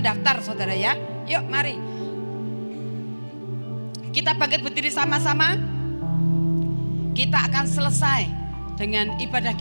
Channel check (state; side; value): inverted; both; correlation -1.00